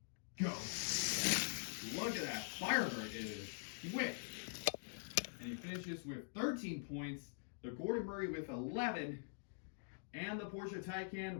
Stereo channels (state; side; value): silent; right; digital silence